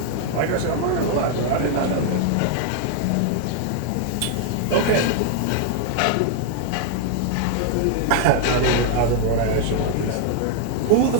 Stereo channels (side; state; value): both; different; correlation 0.00